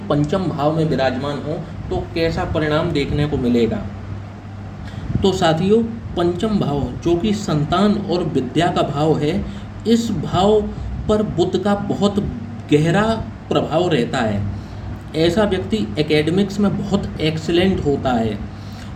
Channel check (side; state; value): both; identical; correlation 1.00